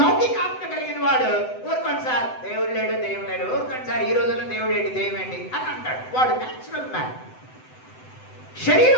కలిగిన వాడు ఊరుకోండి సార్ దేవుడు లేడు, దేవుడు లేడు, ఊరుకోండి సార్ ఈ రోజుల్లో దేవుడు ఏంటి, దైవం ఏంటి అని అంటాడు. వాడు న్యాచురల్ మ్యాన్. శరీర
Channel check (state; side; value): late; right; 7.9 ms